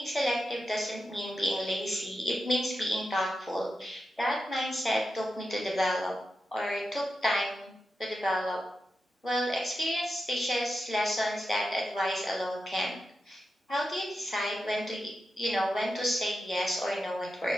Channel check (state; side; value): normal; both; correlation 0.89